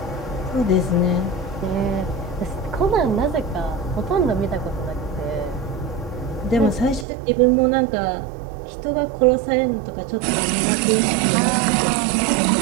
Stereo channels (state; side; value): drops out; left; at 7.1 s